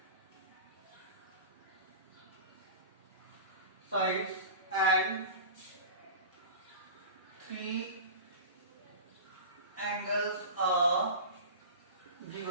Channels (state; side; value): inverted; both; correlation -0.32